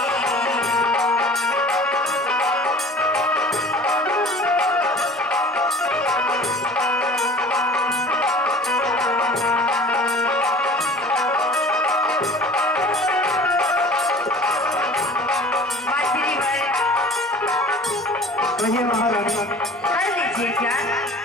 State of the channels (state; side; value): normal; both; correlation 0.44